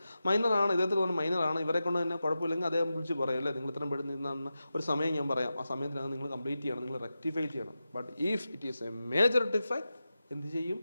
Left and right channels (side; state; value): both; inverted; correlation -0.92